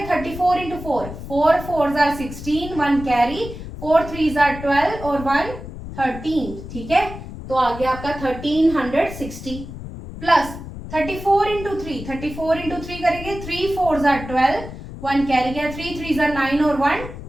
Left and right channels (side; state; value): left; noise; rumble, 11 dB below the sound